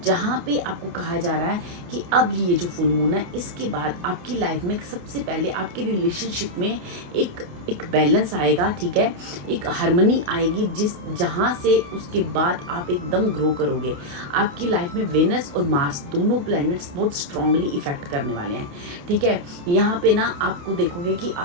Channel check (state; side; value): late; left; 28 ms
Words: जहाँ पे आपको कहा जा रहा है कि अब ये जो फुल मून है, इसके बाद आपकी लाइफ में सबसे पहले आपकी रिलेशनशिप में एक बैलेंस आएगा, ठीक है, एक हार्मनी आएगी, जहाँ से उसके बाद आप एकदम ग्रो करोगे। आपकी लाइफ में वेनस और मार्स दोनों प्लैनेट्स बहुत स्ट्रांगली इफेक्ट करने वाले हैं, ठीक है। यहाँ पे ना आपको देखोगे कि